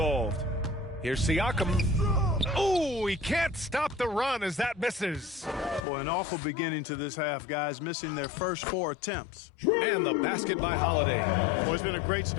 Here's Siakam. Oh, he can't stop the run as that misses. Boy, an awful beginning to this half, guys, missing their first 4 attempts. And the basket by Holiday. Boy, it's been a great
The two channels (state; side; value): drops out; right; at 5.9 s